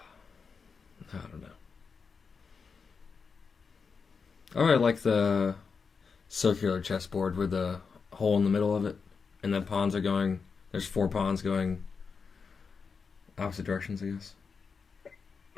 don't know. I really like the circular chessboard with the hole in the middle of it, and the pawns are going. There's 4 pawns going opposite directions, I guess.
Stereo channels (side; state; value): right; quieter; 5.4 dB